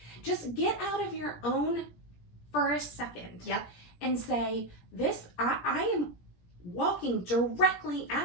Just get out of your own for a second. Yep. And say, I am walking directly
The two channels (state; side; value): late; right; 17 ms